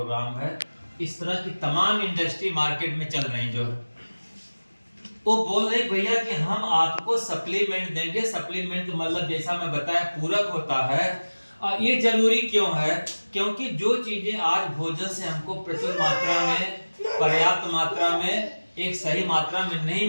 है। इस तरह की तमाम इंडस्ट्री मार्केट में चल रही जो है, वो बोल रहे भैया कि हम आपको सप्लीमेंट देंगे। सप्लीमेंट मतलब जैसा मैं बताया पूरक होता है। ये जरूरी क्यों है? क्योंकि जो चीजें आज भोजन से हमको प्रचुर मात्रा में पर्याप्त मात्रा में, एक सही मात्रा में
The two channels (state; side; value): inverted; both; correlation -1.00